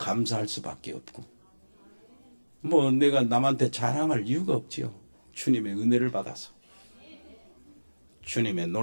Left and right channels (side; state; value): both; inverted; correlation -1.00